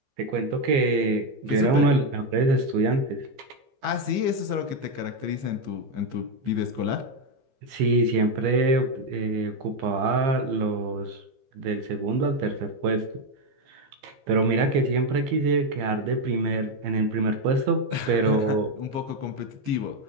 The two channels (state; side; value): late; left; 15 ms